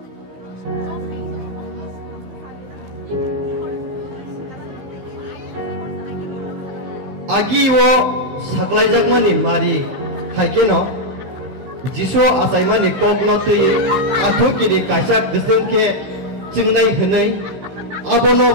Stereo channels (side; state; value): left; late; 15 ms